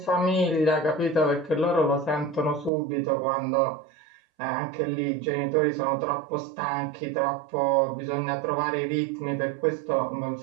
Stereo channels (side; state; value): left; drops out; at 2.7 s